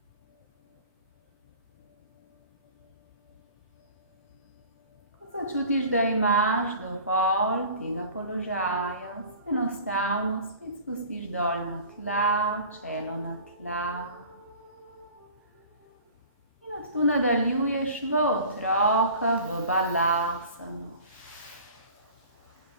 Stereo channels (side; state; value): both; inverted; correlation -0.44